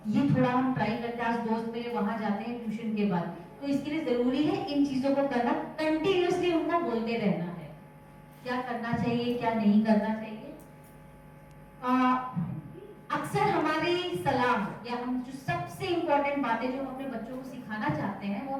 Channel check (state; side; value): identical; both; correlation 1.00